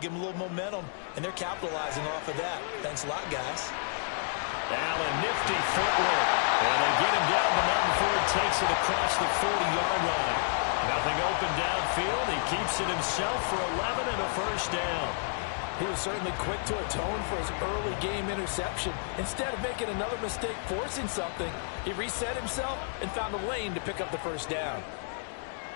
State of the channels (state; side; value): silent; right; digital silence